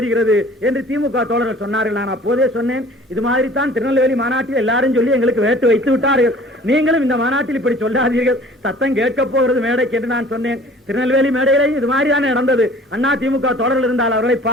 என்று திமுக தோழர்கள் சொன்னார்கள். நான் அப்போதே சொன்னேன், இது மாதிரி தான் திருநெல்வேலி மாநாட்டில் எல்லாரும் சொல்லி எங்களுக்கு வேட்டு வைத்து விட்டார்கள், நீங்களும் இந்த மாநாட்டில் இப்படி சொல்லாதீர்கள், சத்தம் கேட்க போகிறது மேடைக்கு என்று நான் சொன்னேன். திருநெல்வேலி மேடையிலே இது மாதிரி தானே நடந்தது. அண்ணா திமுக தோழர்கள் இருந்தால் அவர்களை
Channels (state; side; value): normal; both; correlation 0.49